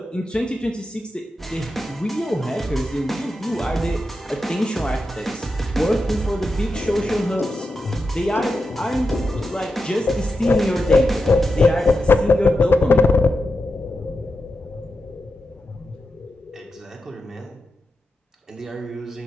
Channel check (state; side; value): normal; both; correlation 0.89